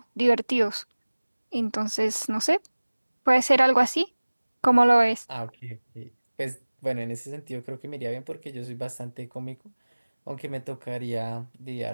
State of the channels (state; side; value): inverted; both; correlation -1.00